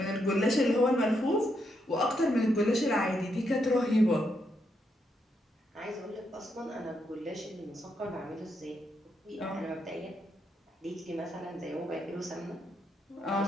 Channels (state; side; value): normal; both; correlation 0.80